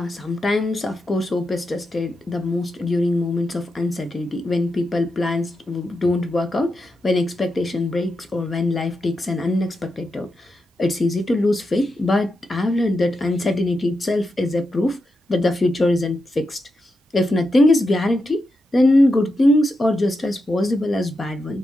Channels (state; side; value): normal; both; correlation 0.87